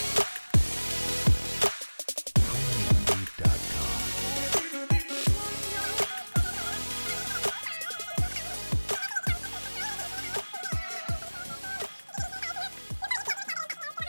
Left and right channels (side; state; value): both; inverted; correlation -1.00